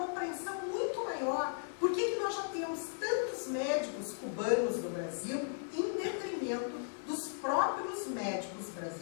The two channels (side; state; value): right; silent; digital silence